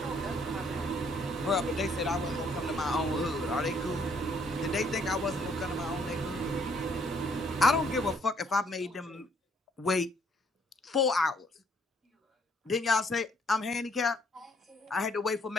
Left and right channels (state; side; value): normal; both; correlation 0.66